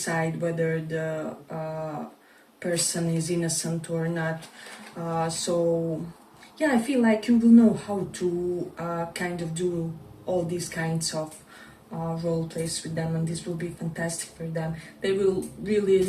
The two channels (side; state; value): both; identical; correlation 1.00